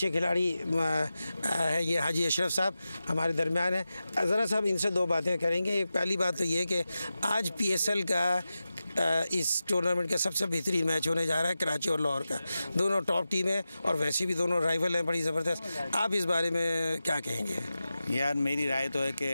खिलाड़ी है ये हाजी अशरफ साहब हमारे दरमियान है। ज़रा साहब इनसे दो बातें करेंगे। एक पहली बात तो ये कि आज PSL का इस टूर्नामेंट का सबसे बेहतरीन मैच होने जा रहा है कराची और लाहौर का। दोनों टॉप टीम है और वैसे भी दोनों राइवल हैं बड़ी ज़बरदस्त। आप इस बारे में क्या कहेंगे? यार मेरी राय तो है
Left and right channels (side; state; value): both; inverted; correlation -0.93